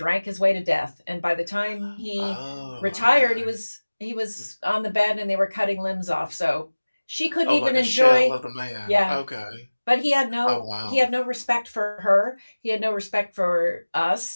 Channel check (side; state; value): both; inverted; correlation -1.00